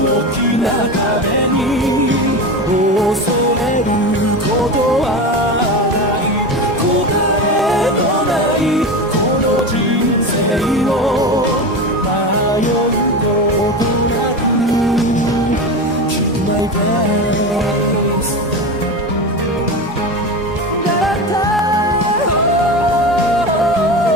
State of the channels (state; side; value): normal; both; correlation 0.24